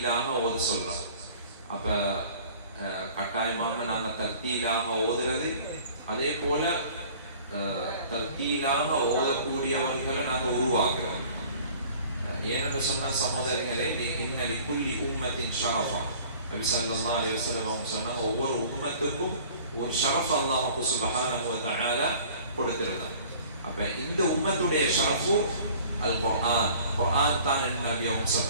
ஓத சொல்கிறார். அப்போ கட்டாயமாக நாங்கள் தர்தீலாக ஓதுறது, அதே போல தர்தீலாக ஓதக்கூடியவர்களை நாங்கள் உருவாக்குறோம். ஏனென்று சொன்ன சகோதரர்களே, இன்னலி குல்லி உம்மத்தின் ஷரஃபா, நபி ஸல்லல்லாஹு அலைஹி வஸல்லம் அவங்க சொன்னாங்க, ஒவ்வொரு உம்மத்துக்கும் ஒரு ஷரஃப் அல்லாஹ் சுப்ஹானஹு வ தஆலா கொடுத்திருந்தாங்க. அப்ப இந்த உம்மத்துடைய ஷரஃபு அல் குர்ஆன், குர்ஆன் தான் நபி அவங்க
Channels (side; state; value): both; inverted; correlation -0.49